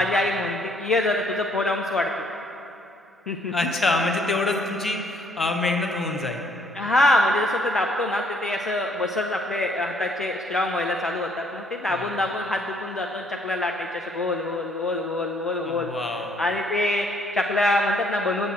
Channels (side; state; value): both; normal; correlation 0.65